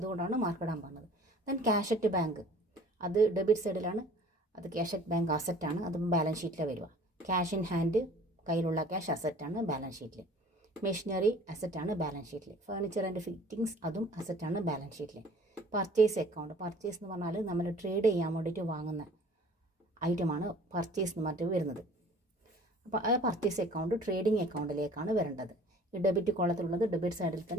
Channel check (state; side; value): normal; both; correlation 0.49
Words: അതുകൊണ്ടാണ് മാർക്ക് ഇടാൻ പറഞ്ഞത്. ദെൻ ക്യാഷ് അറ്റ് ബാങ്ക്, അത് ഡെബിറ്റ് സൈഡിലാണ്. അത് ക്യാഷ് അറ്റ് ബാങ്ക് അസറ്റാണ്. അതും ബാലൻസ് ഷീറ്റിൽ വരിക. ക്യാഷ് ഇൻ ഹാൻഡ്, കയ്യിലുള്ള ക്യാഷ് അസറ്റാണ് ബാലൻസ് ഷീറ്റിൽ. മെഷീനറി അസറ്റാണ് ബാലൻസ് ഷീറ്റിൽ. ഫർണിച്ചർ ആൻഡ് ഫിറ്റിംഗ്സ് അതും അസറ്റാണ് ബാലൻസ് ഷീറ്റിൽ. പർച്ചേസ് അക്കൗണ്ട്, പർച്ചേസ് എന്ന് പറഞ്ഞാൽ നമ്മൾ ട്രേഡ് ചെയ്യാൻ വേണ്ടിയിട്ട് വാങ്ങുന്ന ഐറ്റമാണ് പർച്ചേസ് എന്ന് പറഞ്ഞിട്ട് വരുന്നത്. അപ്പോൾ ആ പർച്ചേസ് അക്കൗണ്ട് ട്രേഡിംഗ് അക്കൗണ്ടിലേക്കാണ് വരേണ്ടത്. ഈ ഡെബിറ്റ് കോളത്തിലുള്ളത് ഡെബിറ്റ് സൈഡിൽ